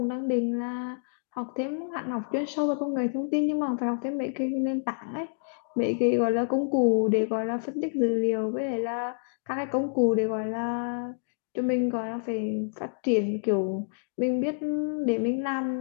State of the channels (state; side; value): silent; right; digital silence